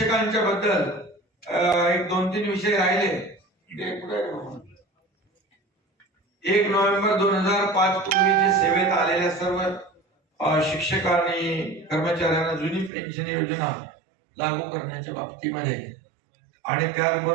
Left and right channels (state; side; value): drops out; left; at 12.9 s